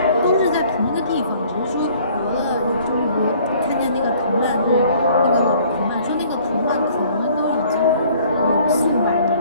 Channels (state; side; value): inverted; both; correlation -0.56